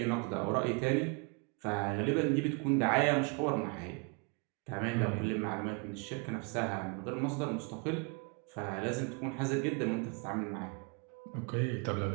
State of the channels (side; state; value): left; quieter; 33.6 dB